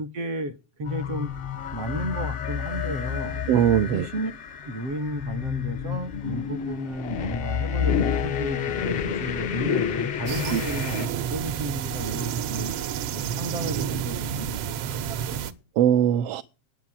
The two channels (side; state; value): left; late; 7.6 ms